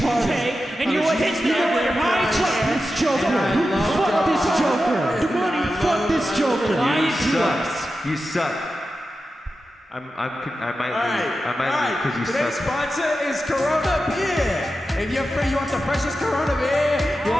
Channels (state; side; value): normal; both; correlation 0.91